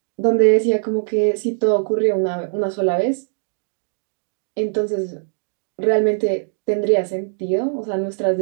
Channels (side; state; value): left; silent; digital silence